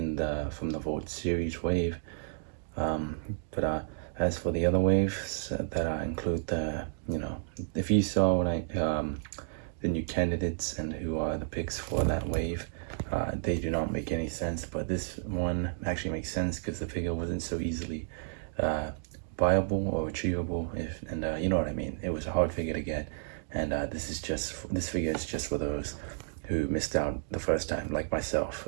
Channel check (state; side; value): silent; left; digital silence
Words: from the Vault Series wave. But as for the other waves that include if you saw the new candidates and who are the picks for that wave, they do not make any sense. But this one actually makes sense because the figure wasn't so easily viable or achievable, and you know what I mean. It was a hard figure to get, and this figure is just for those who missed out the first time, like myself.